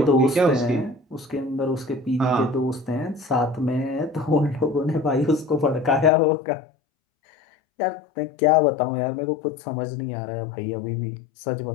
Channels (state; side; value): drops out; right; at 6.1 s